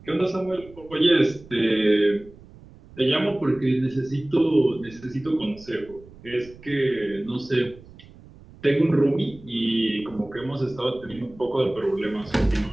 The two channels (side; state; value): right; noise; rumble, 21 dB below the sound